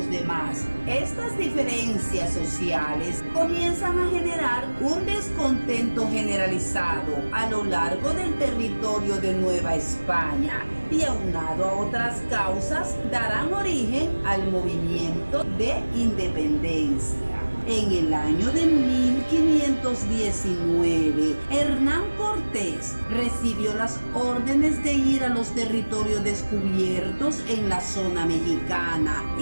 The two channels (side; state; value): both; inverted; correlation -1.00